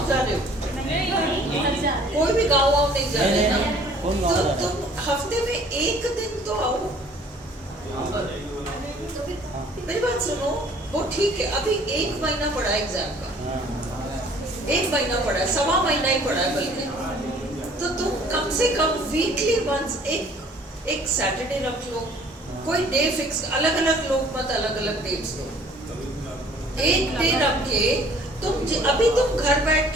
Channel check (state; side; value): normal; both; correlation 0.55